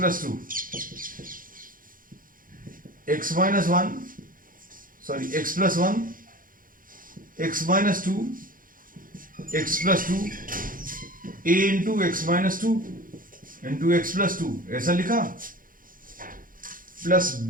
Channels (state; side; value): late; left; 0.40 ms